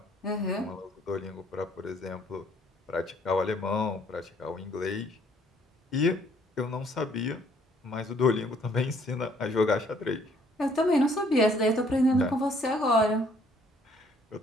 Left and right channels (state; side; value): normal; both; correlation 0.63